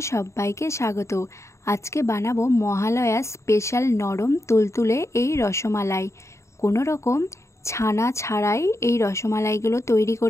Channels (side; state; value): right; late; 0.14 ms